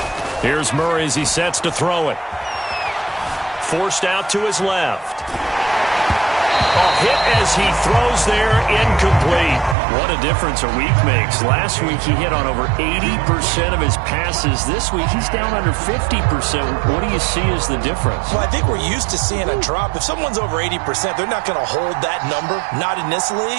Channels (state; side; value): drops out; left; at 9.8 s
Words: Here's Murray as he sets to throw it. Forced out to his left. A hit as he throws there, incomplete. What a difference a week makes. Last week he hit on over 80% of his passes. This week he's down under 50%. What do you see as the difference? Well, I think we're used to seeing a drop. If someone's over 80%, they're not going to hold that number, not in this